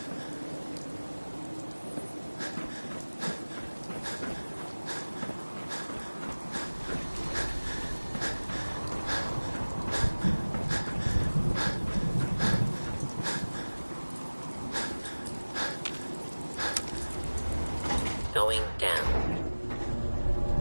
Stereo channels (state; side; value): inverted; both; correlation -1.00